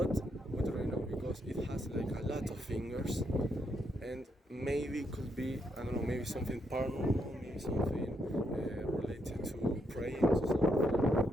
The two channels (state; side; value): normal; both; correlation 0.78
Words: we don't really know because it has like a lot of fingers, and maybe it could be, I don't know, maybe something paranormal, maybe something related to praying to something. We